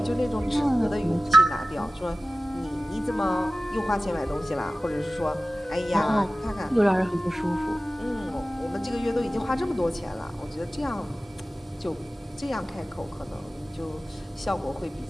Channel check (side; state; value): both; normal; correlation 0.96